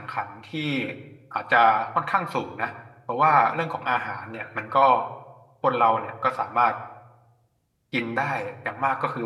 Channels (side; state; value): both; identical; correlation 1.00